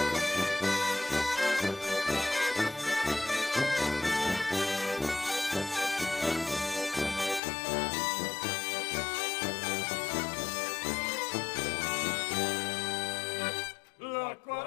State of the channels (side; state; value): right; drops out; at 7.4 s